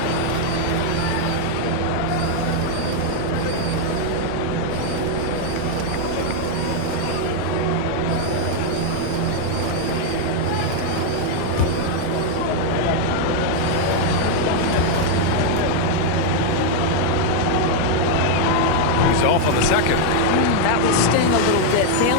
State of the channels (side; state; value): both; different; correlation 0.00